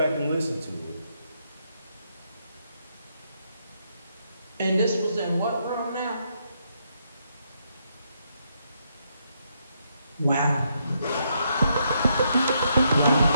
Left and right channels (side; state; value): both; inverted; correlation -0.77